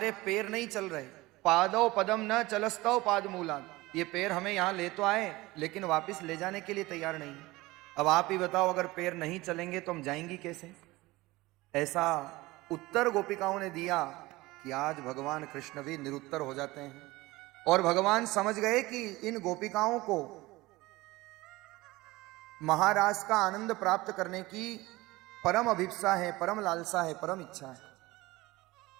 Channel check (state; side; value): quieter; left; 20.3 dB